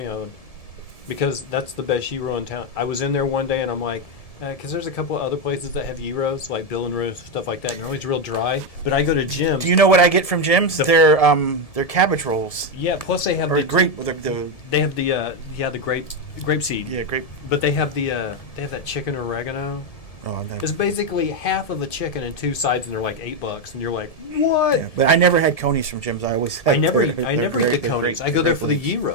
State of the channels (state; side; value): late; right; 1.7 ms